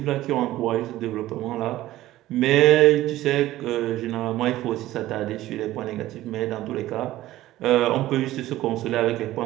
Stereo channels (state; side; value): quieter; left; 15.3 dB